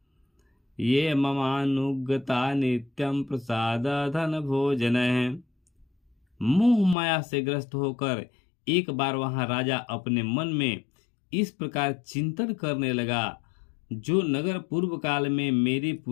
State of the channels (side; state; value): right; drops out; at 7.0 s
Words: ये ममानुगता नित्यं प्रसाद धन भोजन। मोह माया से ग्रस्त होकर एक बार वहां राजा अपने मन में इस प्रकार चिंतन करने लगा, जो नगर पूर्व काल में मेरे